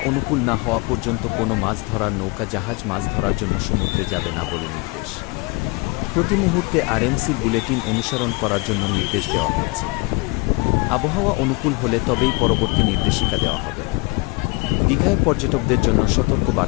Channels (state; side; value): quieter; right; 25.9 dB